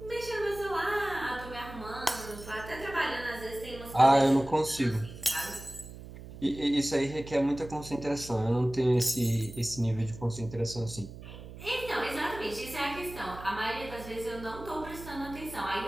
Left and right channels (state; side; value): noise; right; hum, 14 dB below the sound